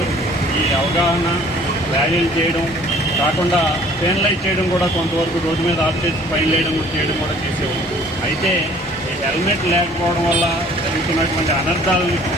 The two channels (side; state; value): both; normal; correlation 0.54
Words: ఈ అవగాహన ర్యాలీలు చేయడం కాకుండా పెనలైజ్ చేయడం కూడా కొంతవరకు రోడ్డు మీద ఆఫ్ చేసి ఫైన్ చేయడం కూడా చేసేవాళ్ళు. అయితే ఈ హెల్మెట్ లేకపోవడం వల్ల జరుగుతున్నటువంటి అనర్థాలను